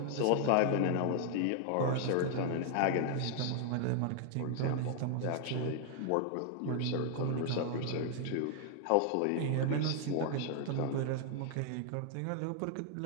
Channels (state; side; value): different; both; correlation 0.00